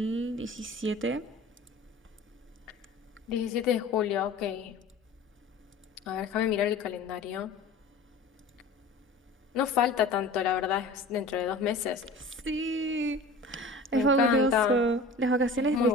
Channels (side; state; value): right; quieter; 3.0 dB